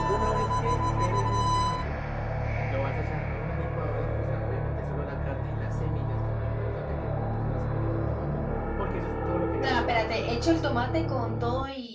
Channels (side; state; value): both; identical; correlation 1.00